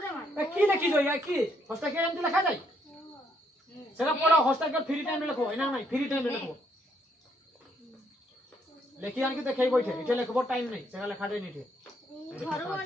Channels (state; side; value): normal; both; correlation 0.72